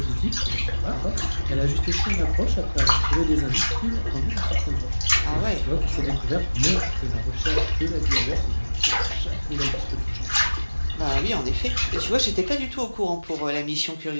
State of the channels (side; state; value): both; inverted; correlation -1.00